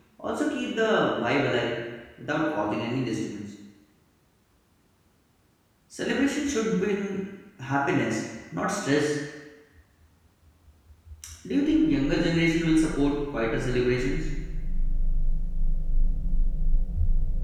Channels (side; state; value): both; identical; correlation 1.00